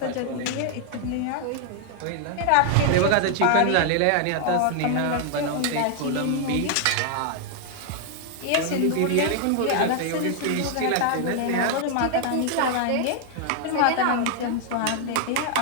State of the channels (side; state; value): both; different; correlation 0.00